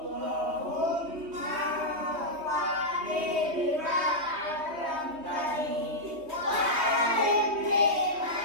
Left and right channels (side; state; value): left; late; 3.2 ms